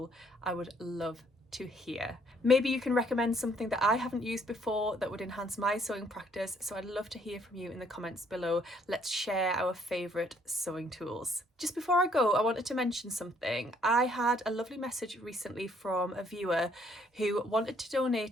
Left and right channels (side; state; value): both; normal; correlation 0.65